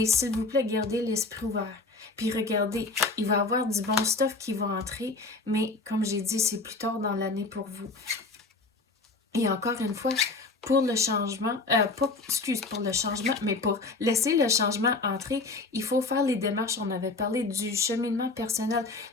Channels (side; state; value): right; quieter; 3.6 dB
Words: s'il vous plaît, gardez l'esprit ouvert. Puis regardez, il va y avoir du bon stuff qui va entrer. Mais comme j'ai dit, c'est plus tard dans l'année pour vous. Et encore une fois, pour le changement, pour le changement, mais pour laisser le changement entrer, il faut faire les démarches. On avait parlé du cheminement personnel.